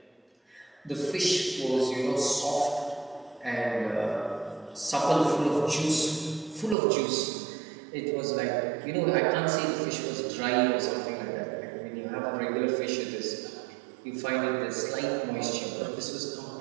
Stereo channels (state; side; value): drops out; left; at 6.8 s